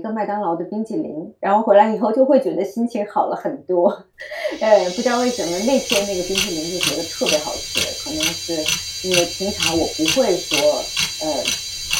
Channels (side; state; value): both; identical; correlation 1.00